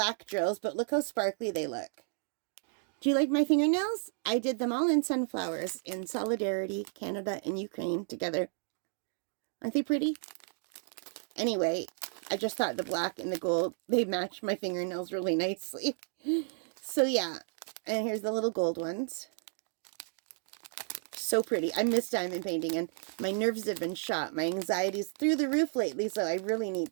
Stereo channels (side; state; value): left; silent; 56 dB below the other